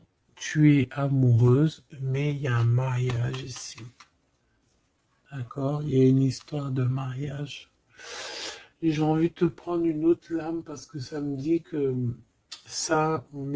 tu es amoureuse, mais il y a un mariage ici. D'accord? Il y a une histoire de mariage. Et j'ai envie de te prendre une autre lame parce que ça me dit que ça, on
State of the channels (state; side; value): identical; both; correlation 1.00